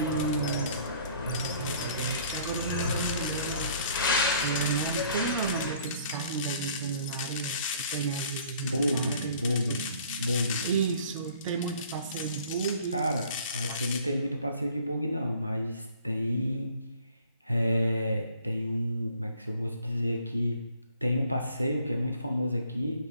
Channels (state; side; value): inverted; both; correlation -0.56